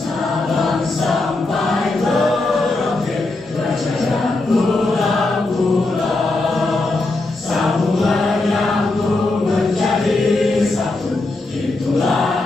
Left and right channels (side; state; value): right; quieter; 3.1 dB